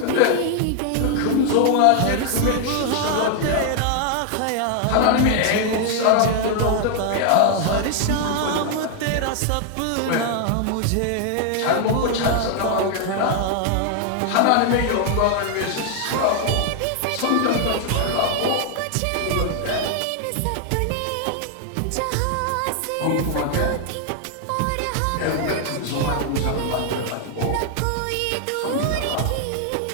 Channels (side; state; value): both; different; correlation 0.00